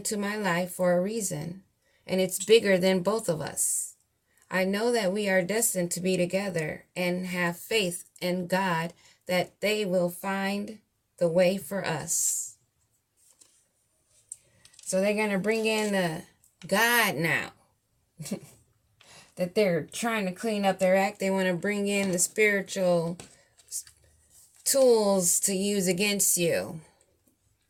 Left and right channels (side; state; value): both; identical; correlation 1.00